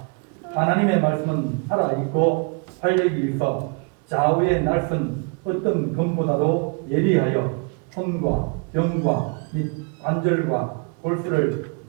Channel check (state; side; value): quieter; left; 35.8 dB